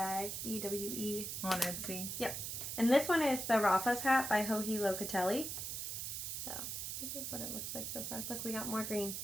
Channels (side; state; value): right; noise; hiss, 4 dB below the sound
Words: EWE. On Etsy. Yep. And this one is the Rafa's hat by Joji Locatelli. So, this is what it looks like so far. Look, we got more green.